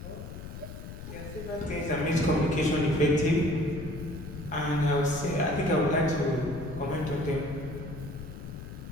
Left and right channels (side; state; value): left; noise; rumble, 11 dB below the sound